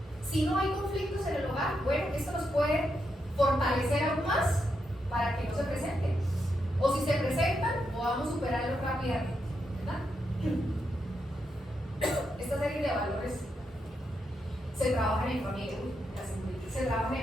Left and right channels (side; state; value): both; normal; correlation 0.83